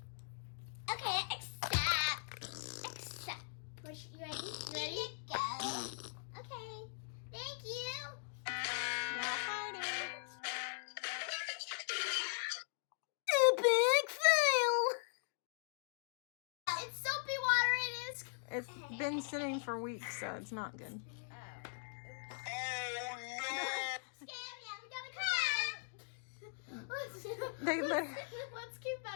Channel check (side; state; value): right; silent; digital silence